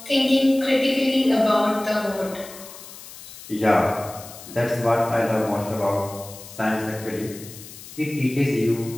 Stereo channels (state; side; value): noise; left; hiss, 16 dB below the sound